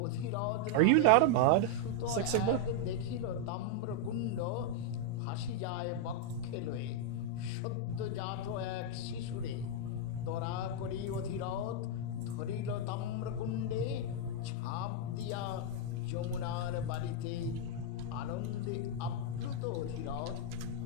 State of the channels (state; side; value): different; both; correlation 0.00